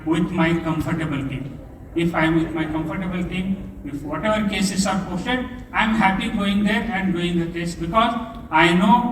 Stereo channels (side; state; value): both; identical; correlation 1.00